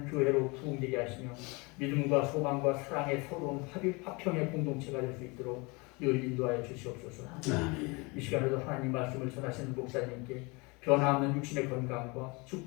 교회로 부흥되게 하시며 믿음과 소망과 사랑의 서러운 화평의 공동체가 될 수 있도록 늘 인도하여 주시옵소서. 이 시간에도 하나님 말씀을 전하시는 목사님께 변화없는 육신의 건강과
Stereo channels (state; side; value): quieter; right; 27.6 dB